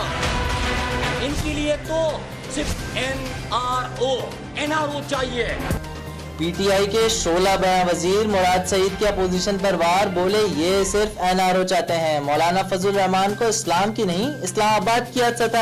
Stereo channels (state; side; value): identical; both; correlation 1.00